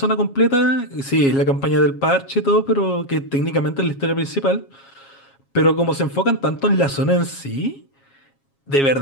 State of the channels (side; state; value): right; late; 7.3 ms